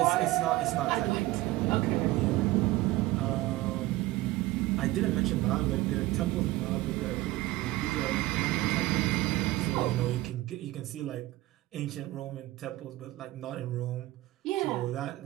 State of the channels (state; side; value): quieter; left; 17.8 dB